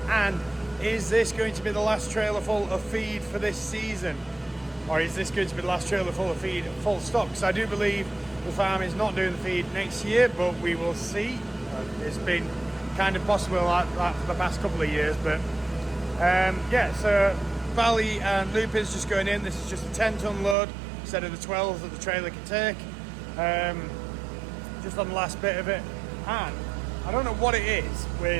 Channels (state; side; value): drops out; left; at 20.6 s